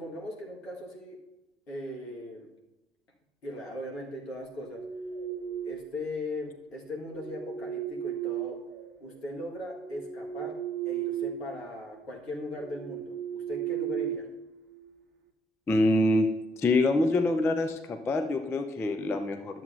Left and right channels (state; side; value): normal; both; correlation 0.69